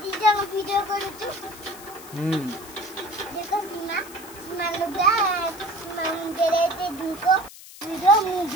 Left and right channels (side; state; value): left; noise; hiss, 17 dB below the sound